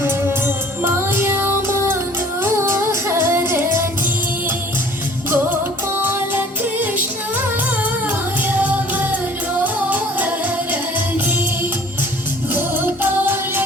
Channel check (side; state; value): both; normal; correlation 0.51